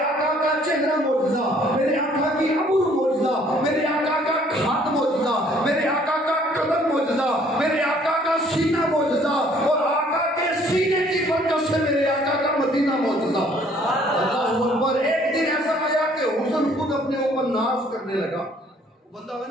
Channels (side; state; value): both; normal; correlation 0.60